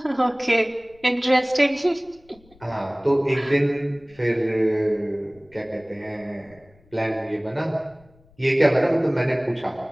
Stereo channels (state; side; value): noise; left; rumble, 29 dB below the sound